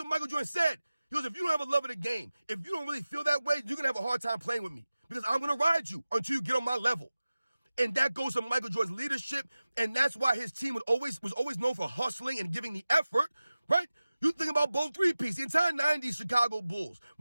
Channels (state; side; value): inverted; both; correlation -0.97